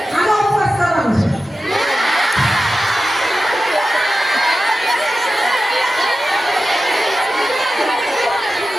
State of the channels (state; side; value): normal; both; correlation 0.93